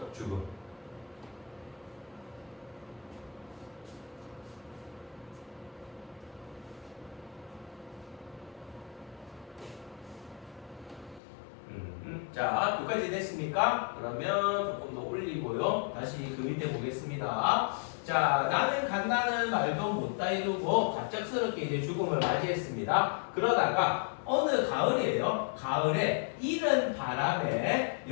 죽음. 자, 여기까지 됐습니까? 그러면 조금 더 올리고요. 다시 그 밑에 보겠습니다. 자, 나는 간다는 말도 못다 이루고 갑작스럽게 이제 죽음을 맞이했습니다. 그러다가 어느 가을이에요. 가을에 이른 바람에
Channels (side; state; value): right; drops out; at 11.2 s